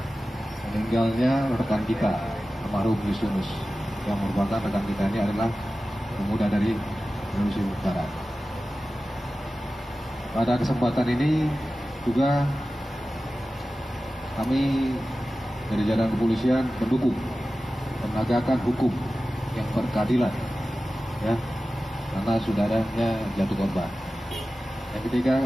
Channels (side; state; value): both; normal; correlation 0.95